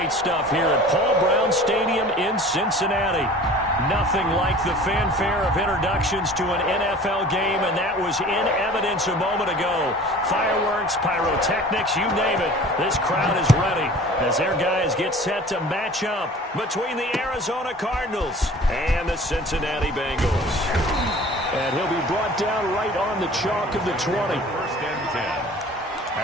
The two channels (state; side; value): normal; both; correlation 0.44